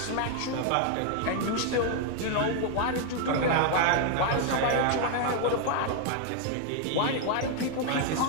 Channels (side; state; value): both; different; correlation 0.00